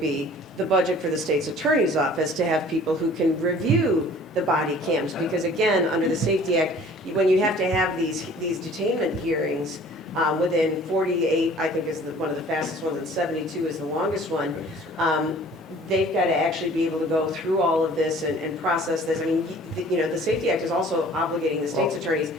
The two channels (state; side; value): normal; both; correlation 0.50